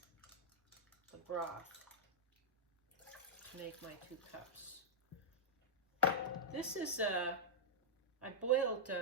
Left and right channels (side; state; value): both; normal; correlation -0.08